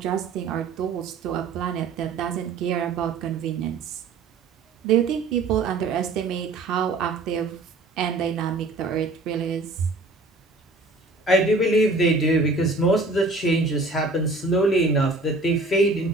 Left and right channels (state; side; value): quieter; left; 3.3 dB